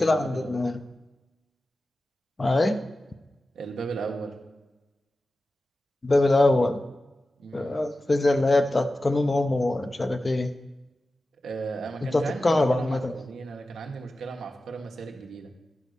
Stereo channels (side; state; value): both; normal; correlation 0.94